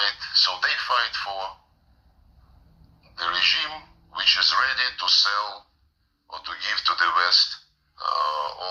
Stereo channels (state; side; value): identical; both; correlation 1.00